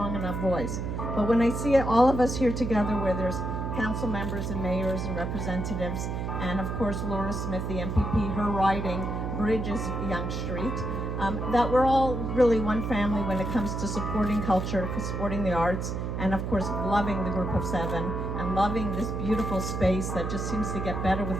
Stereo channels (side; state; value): right; noise; hum, 3 dB below the sound